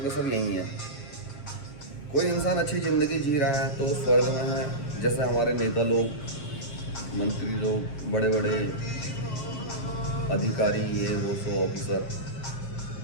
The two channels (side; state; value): right; late; 7.2 ms